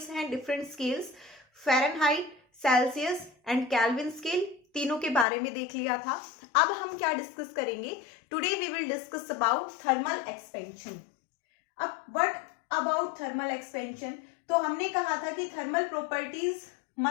हैं, different scales, Fahrenheit, Celsius and kelvin scale, तीनों के बारे में देख लिया था। अब हम क्या डिस्कस करेंगे? Today we will discuss about thermal expansion. अब व्हाट अबाउट थर्मल एक्सपेंशन? तो हमने कहा था कि थर्मल प्रॉपर्टीज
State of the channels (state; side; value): drops out; right; at 5.2 s